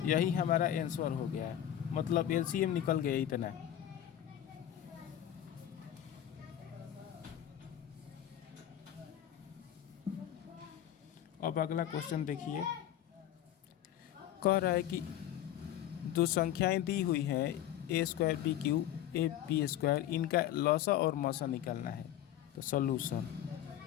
यही हमारा आंसर हो गया, मतलब एलसीएम निकल गया इतना। अब अगला क्वेश्चन देखिए, कह रहा है कि दो संख्याएं दी हुई हैं a square b q a b square, इनका लसा और मसा निकालना है। तो सॉल्यूशन,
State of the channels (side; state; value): right; quieter; 11.5 dB